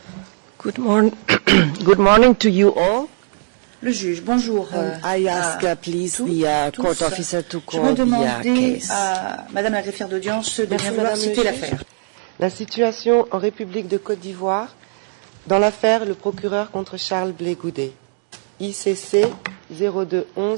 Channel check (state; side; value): silent; left; digital silence